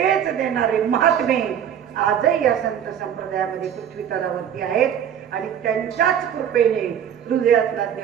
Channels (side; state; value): left; quieter; 9.1 dB